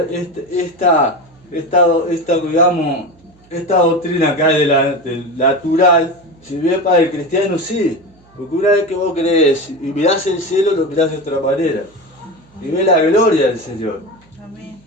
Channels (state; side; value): noise; right; hum, 30 dB below the sound